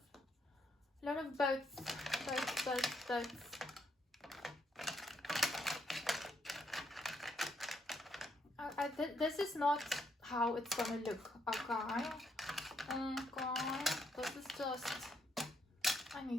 lot of boats. This is not how it's gonna look, okay? Okay, this is just, I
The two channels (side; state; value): both; normal; correlation 0.75